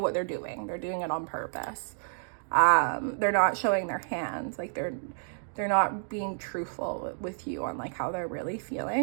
what they're doing it on purpose. They're not showing their hands, like they're not being truthful with you on like how they're really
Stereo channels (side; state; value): left; silent; digital silence